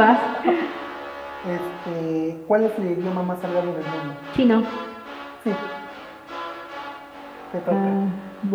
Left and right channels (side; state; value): both; identical; correlation 1.00